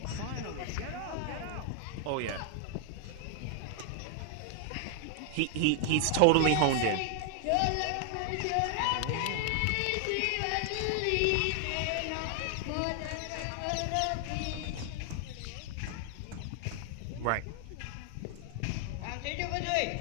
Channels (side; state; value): both; different; correlation 0.00